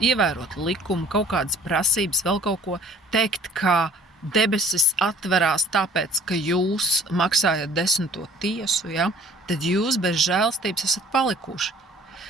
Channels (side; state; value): both; normal; correlation 0.51